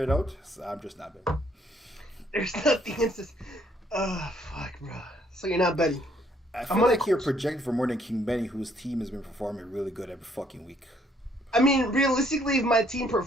it out. So I'm just not betting. There's nothing in this. Oh fuck, bro. So you're not betting. I feel like you're projected for more than King Benny, whose team has been performing really good every fucking week. I mean, realistically, if my team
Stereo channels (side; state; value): both; normal; correlation 0.66